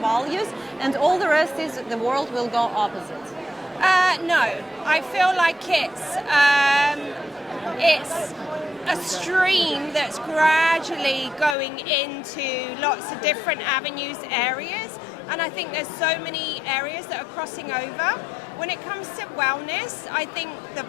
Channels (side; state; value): right; drops out; at 11.6 s